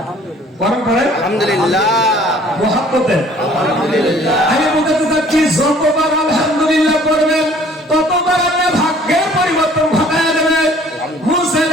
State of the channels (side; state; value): both; normal; correlation 0.55